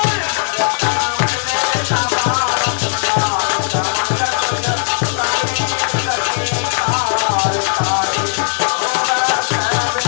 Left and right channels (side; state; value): right; silent; digital silence